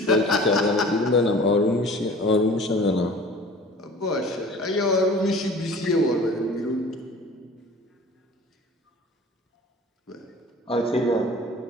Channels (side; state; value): both; normal; correlation 0.44